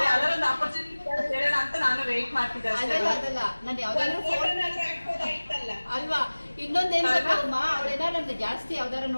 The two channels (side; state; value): both; inverted; correlation -1.00